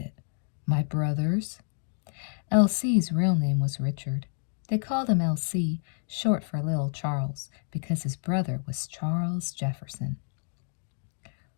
"My brother's." L.C.'s real name was Richard. They called him L.C., short for Little Charles, because his brother was Charles Jefferson.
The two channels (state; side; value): silent; right; digital silence